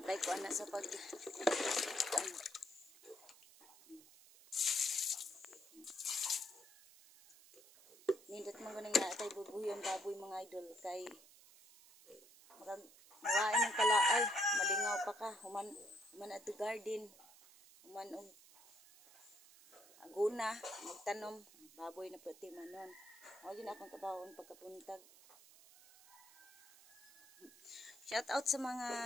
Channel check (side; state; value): right; noise; hiss, 22 dB below the sound